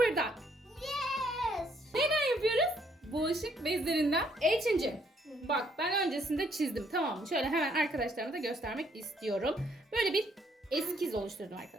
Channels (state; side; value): normal; both; correlation 0.68